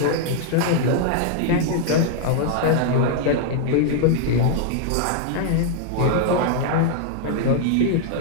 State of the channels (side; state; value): both; different; correlation -0.01